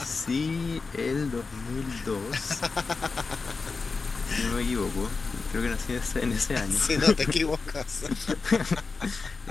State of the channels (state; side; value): quieter; right; 4.3 dB